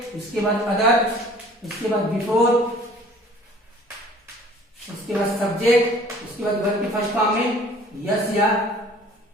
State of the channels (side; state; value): both; normal; correlation 0.51